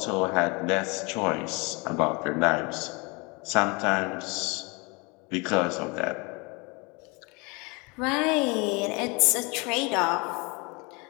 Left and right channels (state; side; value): quieter; right; 28.7 dB